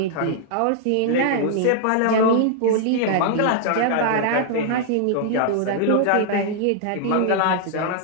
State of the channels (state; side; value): different; both; correlation -0.01